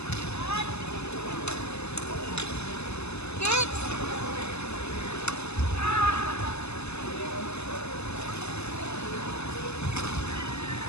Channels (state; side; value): late; right; 0.80 ms